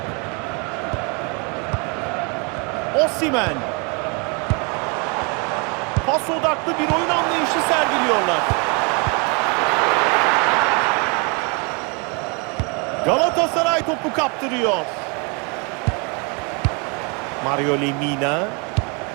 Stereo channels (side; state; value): left; quieter; 33.1 dB